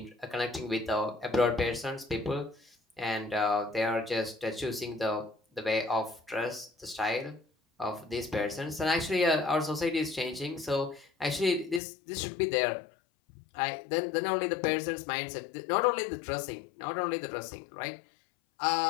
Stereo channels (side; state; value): right; drops out; at 11.8 s